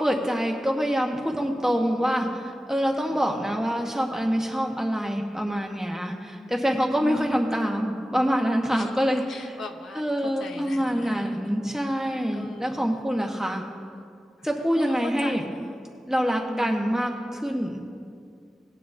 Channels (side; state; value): both; normal; correlation 0.95